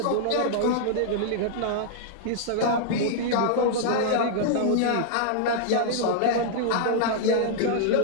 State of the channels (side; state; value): both; different; correlation -0.01